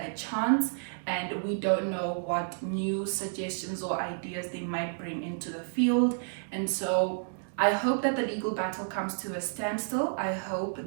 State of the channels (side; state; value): left; silent; digital silence